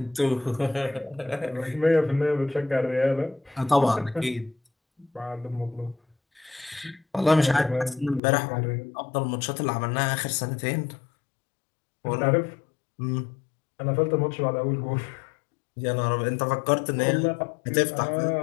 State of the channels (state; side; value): drops out; right; at 8.2 s